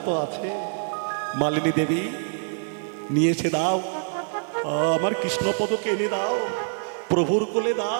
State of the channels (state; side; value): silent; left; digital silence